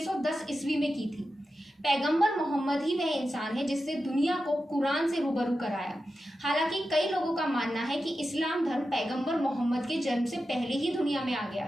ईस्वी में की थी। पैगंबर मोहम्मद ही वह इंसान है जिसने दुनिया को कुरान से रूबरू कराया। हालांकि कई लोगों का मानना है कि इस्लाम धर्म पैगंबर मोहम्मद के जन्म से पहले ही दुनिया में आ गया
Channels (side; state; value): both; normal; correlation 0.91